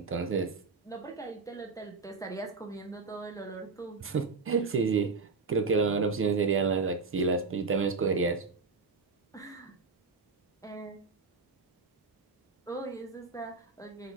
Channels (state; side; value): quieter; left; 4.4 dB